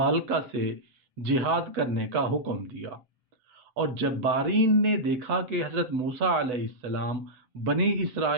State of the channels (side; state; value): left; late; 8.1 ms